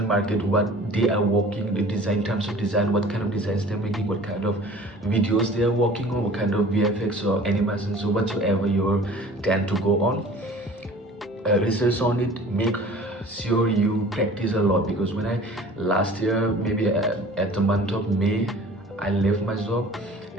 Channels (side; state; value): both; normal; correlation 0.46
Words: market, what they are working, the design, in terms of design, what kind of designs they're making, what kind of videos they are working on, what kind of VFX or animations or whatsoever you tend to go on. Research on it, make sure you practice a lot, because when I last year, maybe at the month of May, I left my job